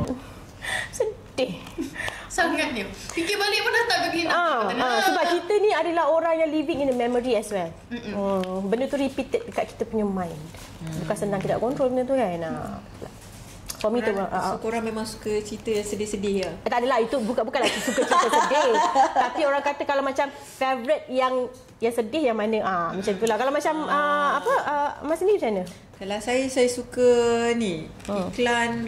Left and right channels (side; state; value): both; identical; correlation 1.00